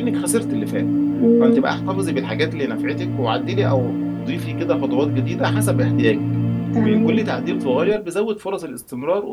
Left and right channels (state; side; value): identical; both; correlation 1.00